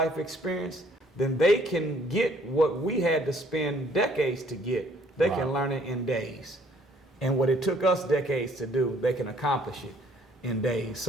experience, then they can get what we had to spend decades to get. They can learn it in days. And what it took us decades to do, they can accomplish it in days.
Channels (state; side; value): normal; both; correlation 0.62